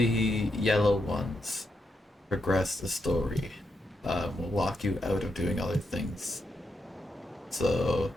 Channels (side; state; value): both; normal; correlation 0.83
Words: yellow ones progress the story. Will lock you out of doing other things. So